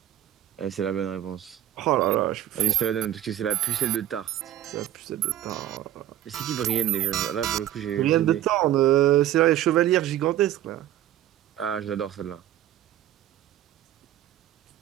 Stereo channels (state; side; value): quieter; left; 12.4 dB